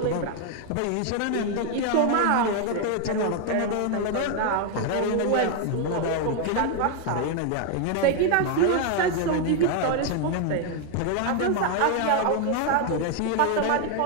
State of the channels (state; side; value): different; both; correlation 0.00